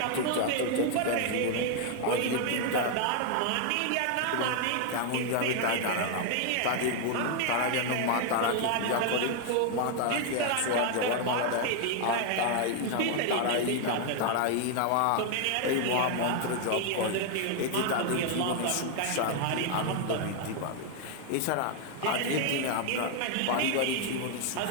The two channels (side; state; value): both; different; correlation 0.00